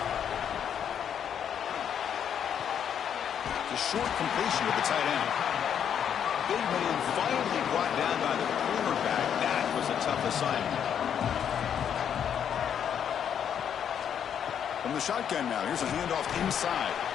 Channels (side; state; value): right; quieter; 8.6 dB